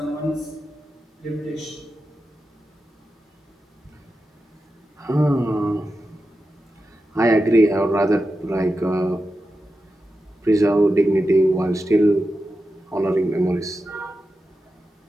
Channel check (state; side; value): normal; both; correlation 0.90